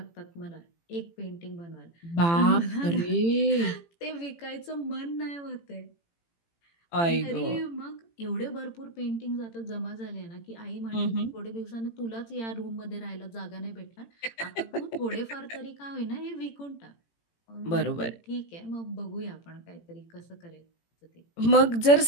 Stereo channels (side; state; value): right; late; 18 ms